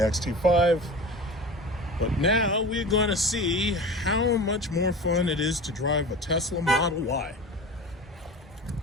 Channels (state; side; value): normal; both; correlation 0.34